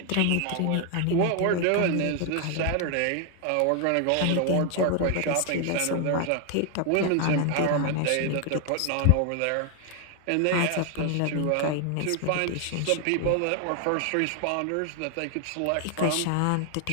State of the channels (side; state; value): both; different; correlation 0.00